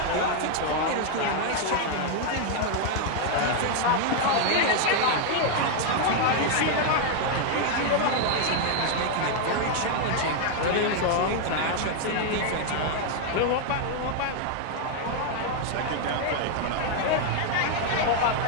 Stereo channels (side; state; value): both; different; correlation 0.00